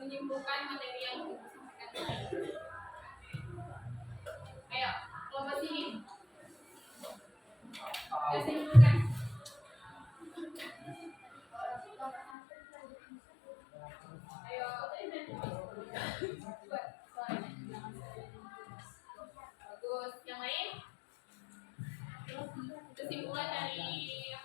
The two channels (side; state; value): right; drops out; at 12.3 s